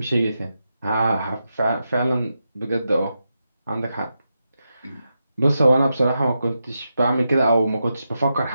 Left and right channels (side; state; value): both; inverted; correlation -0.87